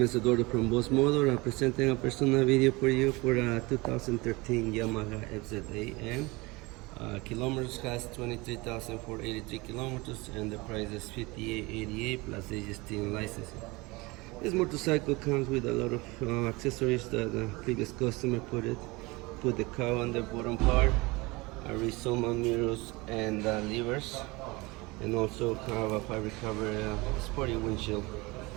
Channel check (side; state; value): left; quieter; 24.0 dB